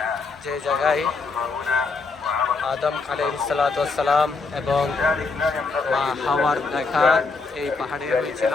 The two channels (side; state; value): right; quieter; 4.2 dB